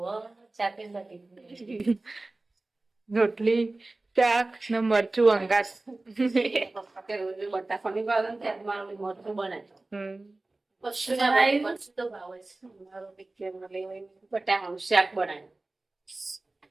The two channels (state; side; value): quieter; left; 3.0 dB